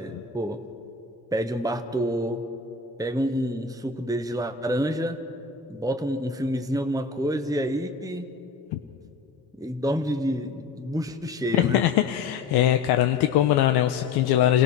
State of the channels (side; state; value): right; quieter; 5.1 dB